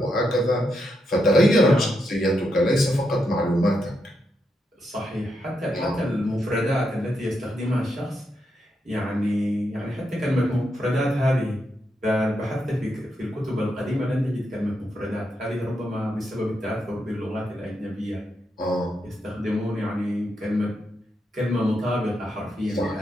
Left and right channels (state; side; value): normal; both; correlation 0.82